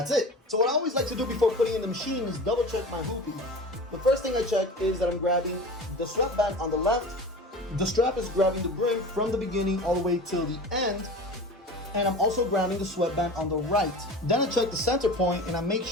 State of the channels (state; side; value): normal; both; correlation 0.35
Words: it. So what I always like to do before putting in the machine is double check my hooping. The first thing I check is that I'm grabbing the sweatband on the left. The strap is grabbing the brim from the beginning all the way till the end. And I'm also grabbing the sweatband on the right. Then I check the center point and I make